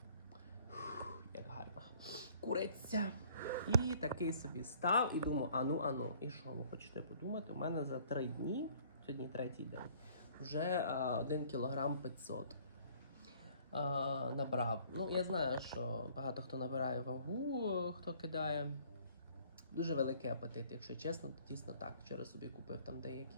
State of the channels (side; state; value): both; inverted; correlation -0.57